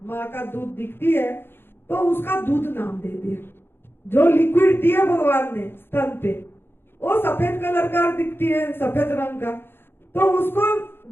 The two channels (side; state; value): right; late; 0.11 ms